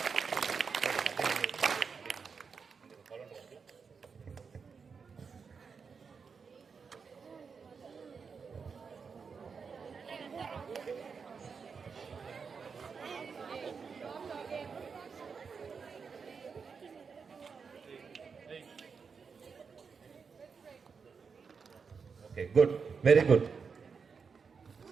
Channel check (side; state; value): left; quieter; 5.6 dB